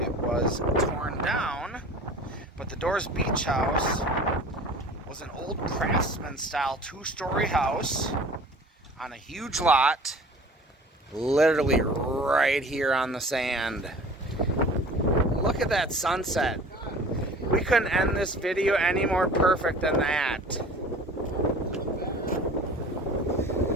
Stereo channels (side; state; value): both; normal; correlation 0.43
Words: was torn down. But the Doors Beach House was an old craftsman-style two-story house on a huge lot, literally right here on the sand. Look at that sunset. We couldn't end this video any more perfect than that.